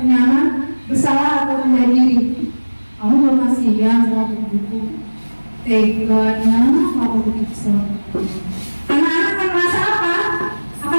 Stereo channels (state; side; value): inverted; both; correlation -1.00